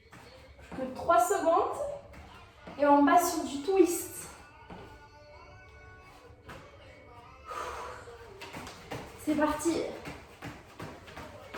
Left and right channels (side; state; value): both; identical; correlation 1.00